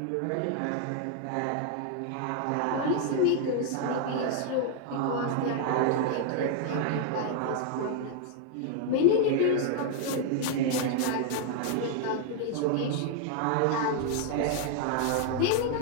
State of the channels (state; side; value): different; both; correlation 0.00